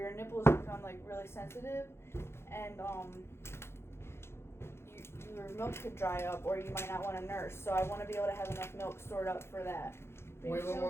nipples become like really sensitive, and your milk could dry up, or you might not want to nurse. So I want to be able to have enough milk stored up for that. Waylon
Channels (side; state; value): right; late; 0.12 ms